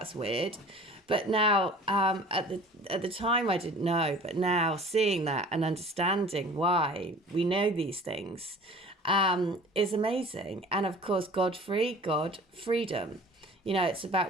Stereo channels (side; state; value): both; normal; correlation 0.45